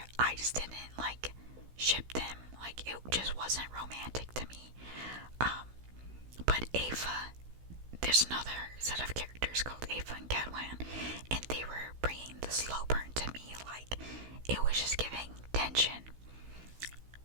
I just didn't like ship them. Like, it just wasn't romantic to me. But Ava, there's another set of characters called Ava and Cadwan, and they were bringing the slow burn to me. Like, it was just giving tension.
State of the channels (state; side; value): late; left; 16 ms